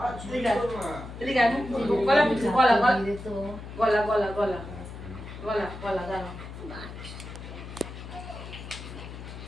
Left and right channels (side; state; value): left; noise; hum, 11 dB below the sound